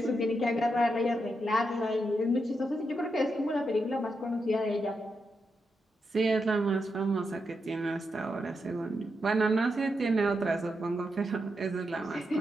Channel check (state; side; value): normal; both; correlation 0.85